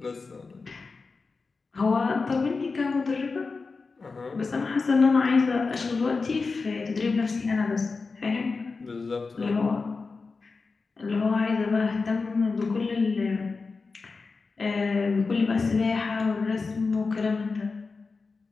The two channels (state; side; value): quieter; right; 4.3 dB